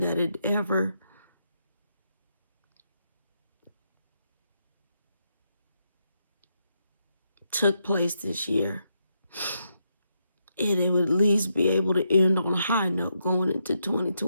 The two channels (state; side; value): inverted; both; correlation -0.81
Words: that had ever took place this year, it would at least be able to end on a high note going into